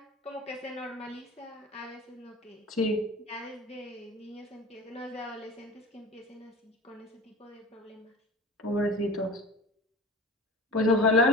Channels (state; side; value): normal; both; correlation 0.37